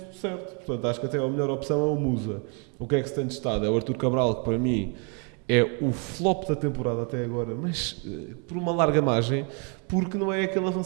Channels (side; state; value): left; quieter; 36.9 dB